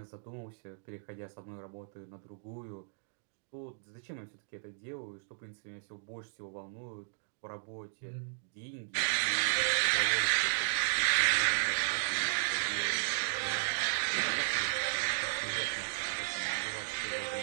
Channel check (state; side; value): silent; left; digital silence